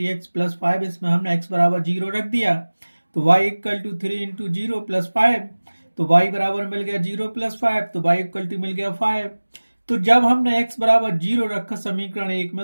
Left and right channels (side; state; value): both; inverted; correlation -1.00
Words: प्लस 5, इसमें हमने x बराबर 0 रख दिया। तो y equal to 3 into 0 plus 5, तो y बराबर मिल गया 0 प्लस 5, तो y इक्वल टू मिल गया 5। तो जब हमने x बराबर 0 रखा समीकरण 1